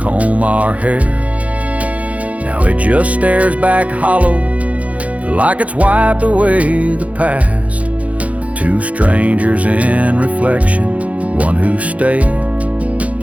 our hair. Now it just stares back hollow, like it's wiped away the past. Two strangers in reflection, one who stayed,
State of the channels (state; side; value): late; left; 0.067 ms